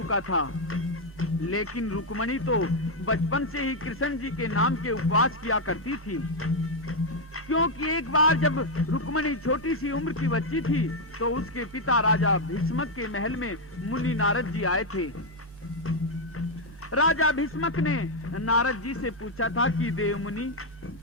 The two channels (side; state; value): both; normal; correlation 0.01